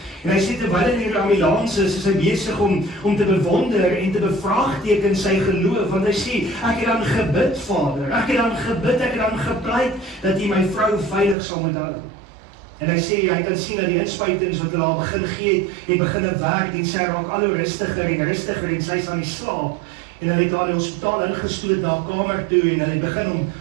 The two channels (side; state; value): left; drops out; at 11.4 s